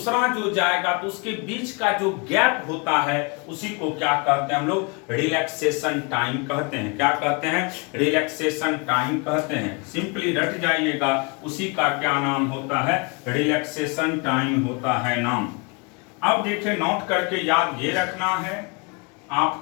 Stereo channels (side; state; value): right; quieter; 31.1 dB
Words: जो जाएगा तो उसके बीच का जो गैप होता है उसी को क्या कहते हैं हम लोग, रिलैक्सेशन टाइम कहते हैं। क्या कहते हैं, रिलैक्सेशन टाइम कहते हैं। सिंपली रट जाइएगा, उसी का क्या नाम होता है, रिलैक्सेशन टाइम होता है नाम। अब देखिए नोट करके याद ये रखना है